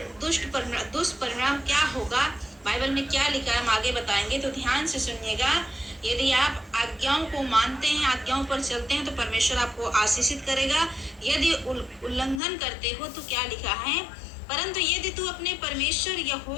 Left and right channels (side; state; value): right; drops out; at 12.4 s